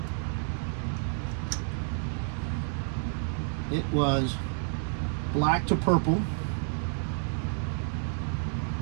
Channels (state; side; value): silent; left; 58 dB below the other